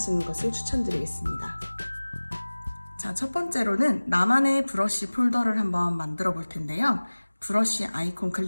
것을 추천드리겠습니다. 자, 첫 번째로는 나만의 브러쉬 폴더를 한번 만들어 볼 텐데요. 브러쉬 아이콘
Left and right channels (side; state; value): both; inverted; correlation -1.00